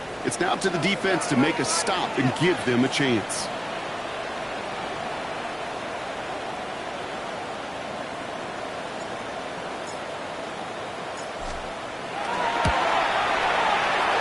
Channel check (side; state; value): both; identical; correlation 1.00